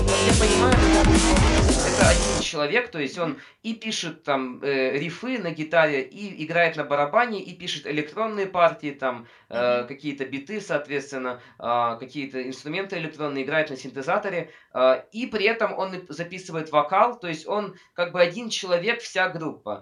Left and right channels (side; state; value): both; identical; correlation 1.00